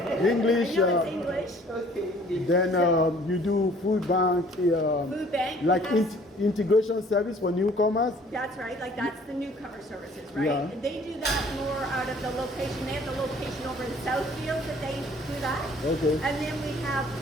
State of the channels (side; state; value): both; normal; correlation 0.55